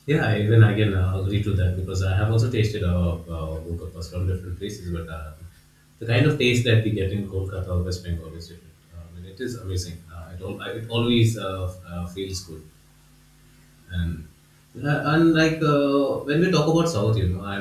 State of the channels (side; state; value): both; identical; correlation 1.00